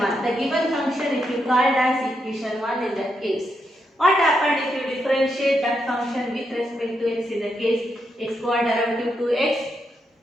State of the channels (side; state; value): both; normal; correlation 0.82